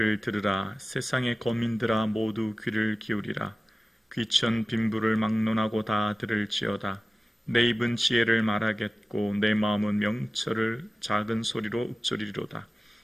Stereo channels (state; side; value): normal; both; correlation 0.96